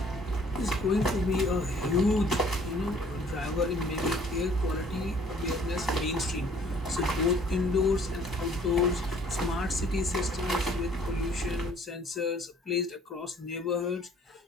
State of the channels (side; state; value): both; normal; correlation 0.57